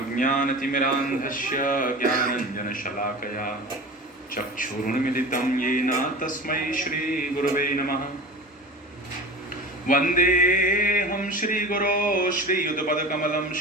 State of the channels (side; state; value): both; normal; correlation 0.34